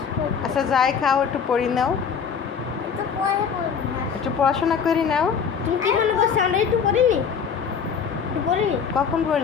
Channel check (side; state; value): right; quieter; 6.7 dB